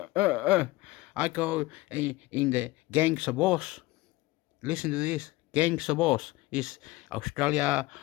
I go in the Gangs of Oz. Listen to this. Gangs of Oz is Australia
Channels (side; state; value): right; quieter; 19.7 dB